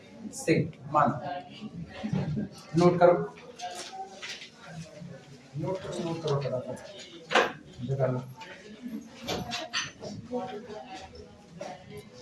से मान नोट करो, नोट करो फटाफट जगह लो।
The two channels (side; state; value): both; identical; correlation 1.00